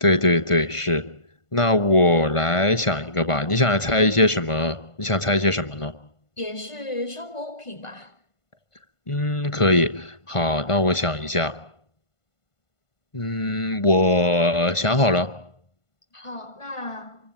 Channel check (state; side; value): late; right; 1.5 ms